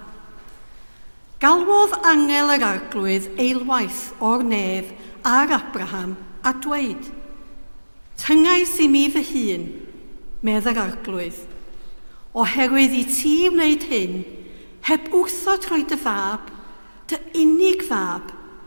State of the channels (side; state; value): both; inverted; correlation -1.00